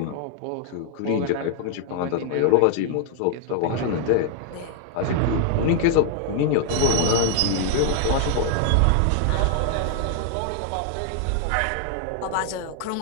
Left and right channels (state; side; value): different; both; correlation 0.00